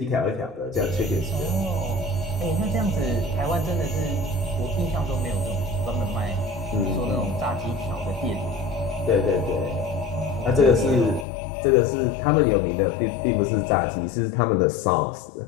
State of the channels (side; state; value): right; drops out; at 11.2 s